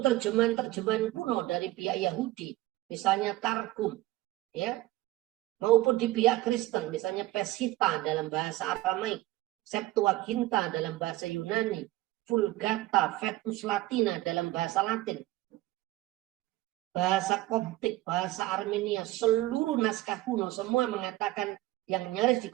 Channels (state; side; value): quieter; left; 17.3 dB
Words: terjemahan-terjemahan kuno dari pihak Yahudi, misalnya Targum, ya, maupun di pihak Kristen, misalnya Peshitta dalam bahasa Aramaik, Septuaginta dalam bahasa Yunani, Vulgata, Vetus Latina dalam bahasa Latin, bahasa Koptik, bahasa Armenia, seluruh naskah kuno semua mengatakan yang nyaris